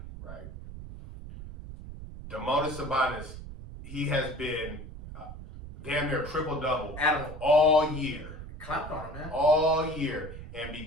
right? Domantas Sabonis, he has been damn near triple-double all year. Clapped on him, man. All year. And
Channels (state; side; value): noise; right; rumble, 12 dB below the sound